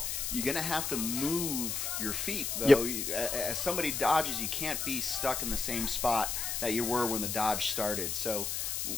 You're going to have to move your feet, though. As somebody dodges, you can't be stuck in the same spot that you were when the dodge started. So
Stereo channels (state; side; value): noise; left; hiss, 2 dB below the sound